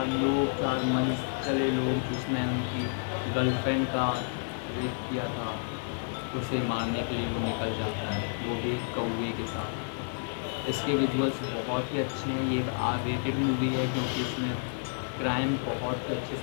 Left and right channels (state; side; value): silent; right; digital silence